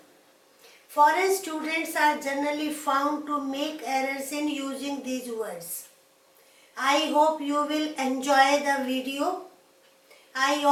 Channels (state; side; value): identical; both; correlation 1.00